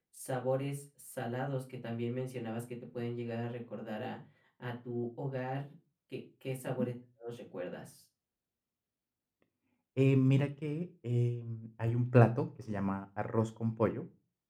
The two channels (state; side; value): identical; both; correlation 1.00